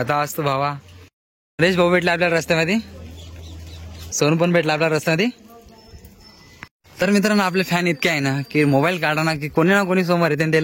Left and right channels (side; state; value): both; identical; correlation 1.00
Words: असतो भावा. नरेश भाऊ भेटला आपल्याला रस्त्यामध्ये, सोनू पण भेटला आपल्या रस्त्यामध्ये. तर मित्रांनो, आपले फॅन इतके आहे ना की मोबाईल काढा ना की कोणी ना कोणी समोर येते